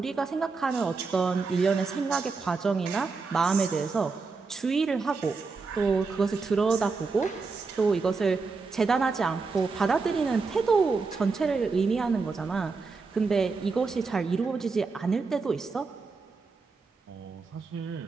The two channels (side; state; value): left; quieter; 4.4 dB